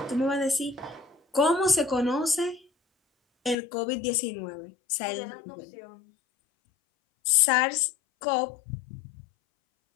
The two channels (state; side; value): drops out; right; at 3.6 s